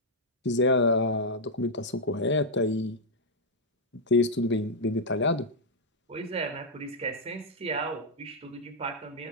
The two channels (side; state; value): both; normal; correlation -0.04